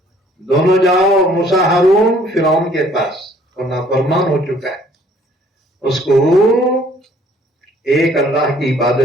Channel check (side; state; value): both; normal; correlation 0.59